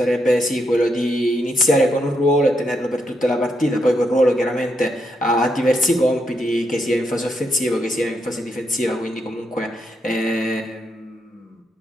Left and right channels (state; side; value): normal; both; correlation 0.80